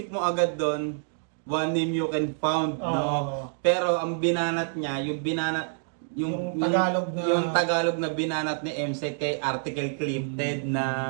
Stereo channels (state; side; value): silent; left; digital silence